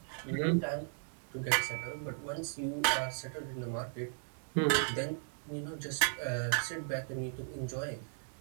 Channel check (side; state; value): left; silent; digital silence